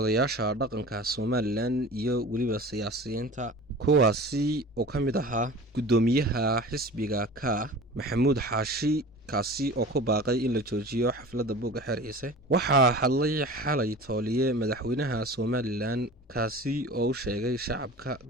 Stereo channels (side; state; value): both; normal; correlation 0.38